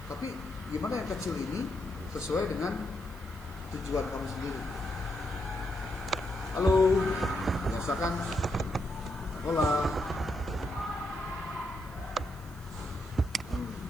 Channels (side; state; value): left; noise; hiss, 24 dB below the sound